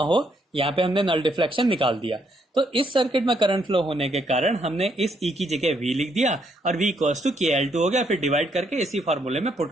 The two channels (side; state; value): both; normal; correlation 0.73